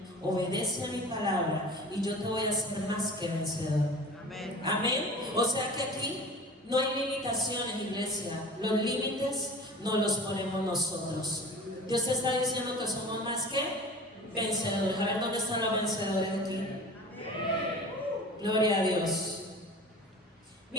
obedece a mi palabra y yo te voy a hacer más que vencedor. Amén. Amén. O sea que aquí no hay limitaciones, iglesia. Los límites no los ponemos nosotros. Dios te está diciendo que somos más que vencedores. A ver, ¿dónde están los vencedores aquí? Amén. Gloria a Dios.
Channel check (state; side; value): normal; both; correlation 0.39